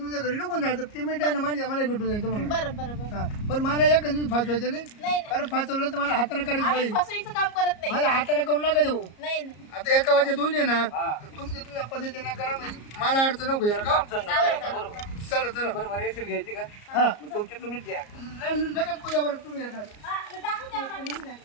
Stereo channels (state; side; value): late; right; 34 ms